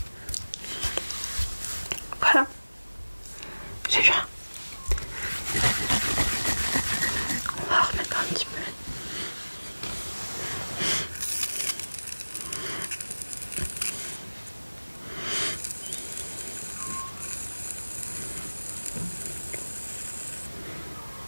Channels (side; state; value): both; inverted; correlation -1.00